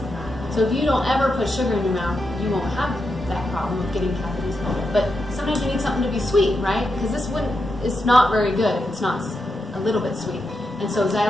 So if you don't ever put sugar in your mouth, you won't have that problem of getting cavities. But sometimes you need something to be sweet, right? Because it's not very good if it's not a little bit sweet. And so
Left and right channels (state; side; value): normal; both; correlation 0.85